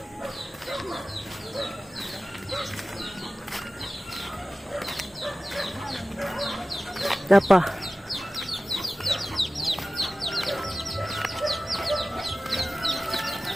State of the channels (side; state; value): both; normal; correlation 0.96